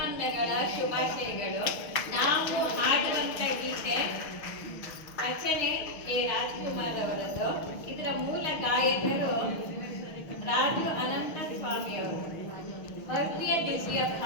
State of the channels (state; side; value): late; right; 6.6 ms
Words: ಶುಭಾಶಯಗಳು. ನಾವು ಹಾಡುವಂಥ ಗೀತೆ ರಚನೆ ಎ ರಾಜ್ಕುಮಾರ್ ಅವರದ್ದು. ಇದರ ಮೂಲ ಗಾಯಕರು ರಾಜು ಅನಂತ ಸ್ವಾಮಿ ಅವರು. ಭವ್ಯ ದಿವ್ಯ